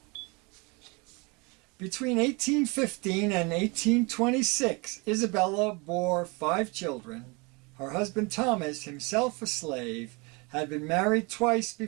Between 1815 and 1826, Isabella bore 5 children. Her husband Thomas, himself a slave, had been married twice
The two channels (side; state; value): left; quieter; 28.7 dB